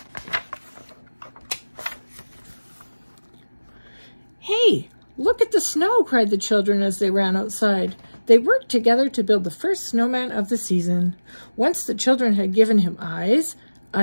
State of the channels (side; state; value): both; inverted; correlation -1.00